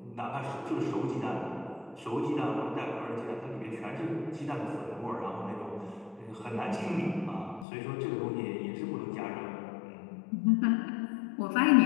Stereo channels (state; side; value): drops out; right; at 7.7 s